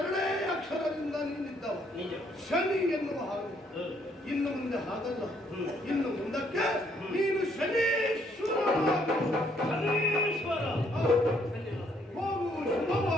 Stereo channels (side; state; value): both; normal; correlation 0.68